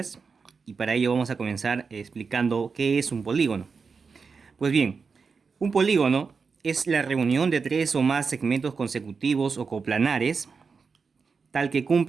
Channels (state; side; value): quieter; left; 5.1 dB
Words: y para ello vamos a comenzar explicando qué es un polígono. Pues bien, un polígono es la reunión de tres o más segmentos consecutivos o coplanares tal que